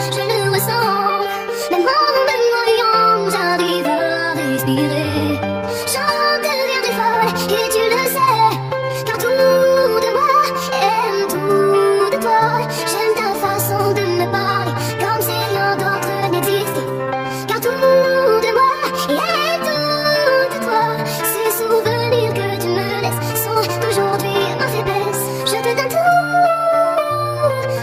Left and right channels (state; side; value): identical; both; correlation 1.00